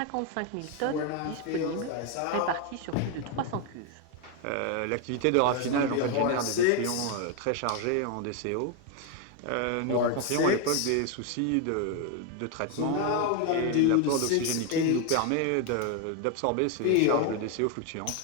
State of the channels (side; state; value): both; different; correlation 0.01